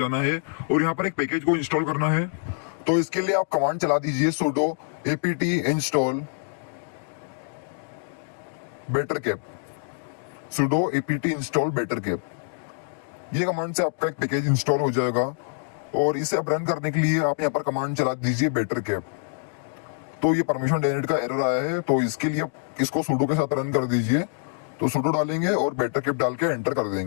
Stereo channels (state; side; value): silent; right; digital silence